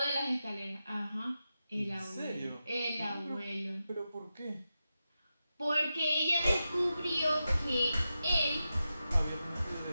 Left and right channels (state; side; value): inverted; both; correlation -0.91